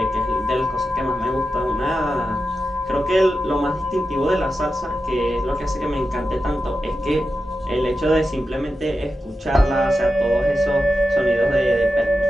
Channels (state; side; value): normal; both; correlation 0.90